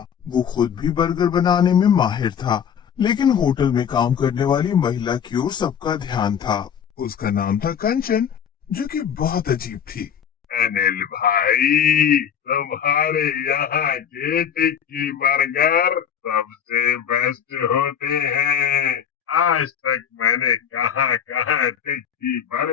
वो खुद भी बर्गर बनाने में माहिर था, लेकिन होटल में काम करने वाली महिला की ओर सबका ध्यान था। उसका नाम था कंचन, जो कि बहुत अजीब थी। अनिल भाई, तुम्हारे यहाँ के टिक्की बर्गर सबसे बेस्ट होते हैं। आज तक मैंने कहाँ कहाँ टिक्की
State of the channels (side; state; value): right; quieter; 8.3 dB